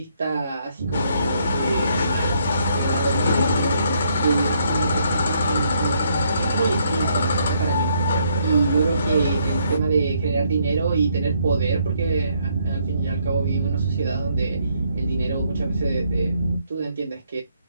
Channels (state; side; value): inverted; both; correlation -0.71